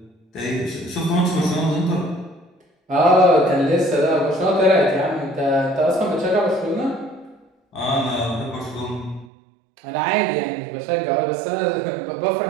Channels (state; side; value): drops out; left; at 9.3 s